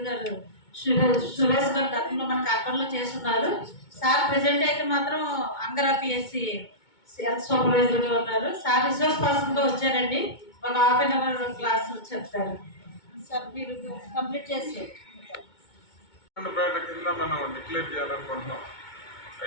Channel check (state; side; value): late; right; 2.2 ms